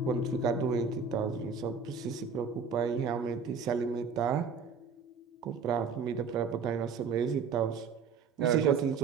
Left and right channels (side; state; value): left; quieter; 5.7 dB